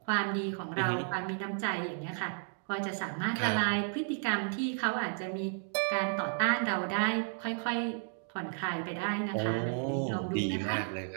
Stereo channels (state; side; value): silent; left; 56 dB below the other